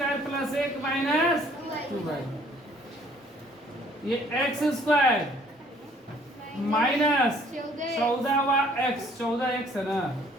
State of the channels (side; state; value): both; normal; correlation 0.59